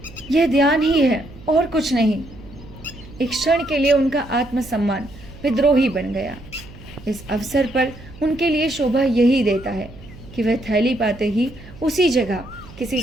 यह ध्यान ही है और कुछ नहीं। एक क्षण के लिए उनका आत्मसम्मान विद्रोही बन गया। इस अवसर पर उनके लिए शोभा यही देता है कि वह थैली पाते ही उसी जगह किसी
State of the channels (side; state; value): right; noise; hum, 19 dB below the sound